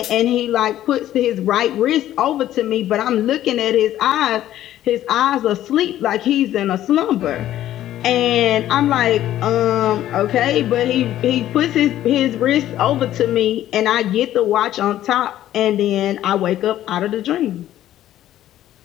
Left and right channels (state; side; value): quieter; right; 12.8 dB